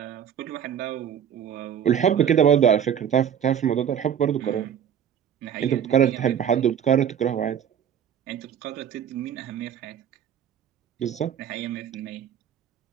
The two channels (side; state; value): left; quieter; 8.9 dB